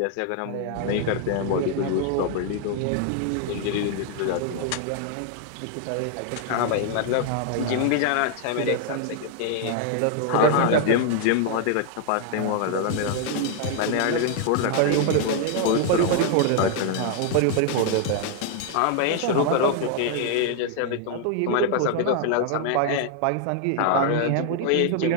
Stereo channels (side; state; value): both; different; correlation 0.00